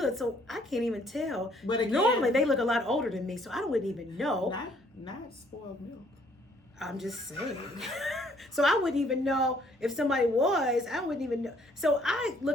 so I can't even tell. But again, normally they look a lot older than me, so I wouldn't even know. Not spoiled milk. I'm just saying. So I wouldn't even know if somebody was. I wouldn't even know. So I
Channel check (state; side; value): normal; both; correlation 0.63